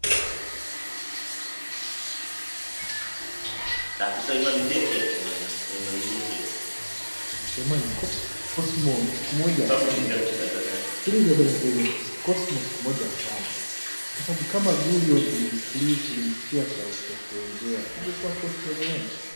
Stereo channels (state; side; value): inverted; both; correlation -1.00